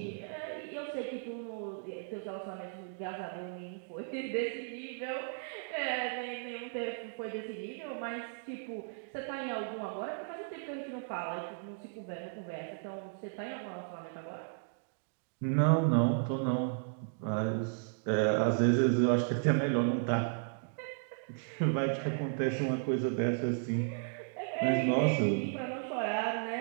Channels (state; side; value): silent; left; digital silence